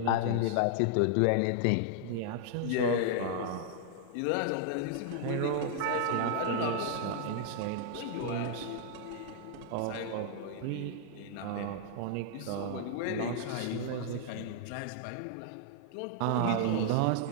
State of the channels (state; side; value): different; both; correlation -0.01